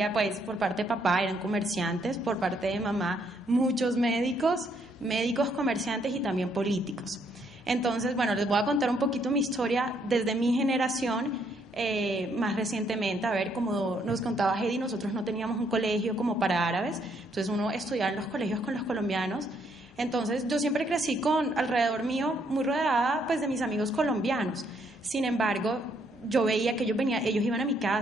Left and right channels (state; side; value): normal; both; correlation 0.71